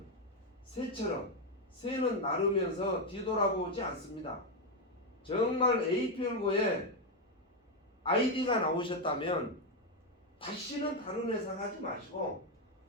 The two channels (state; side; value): normal; both; correlation 0.05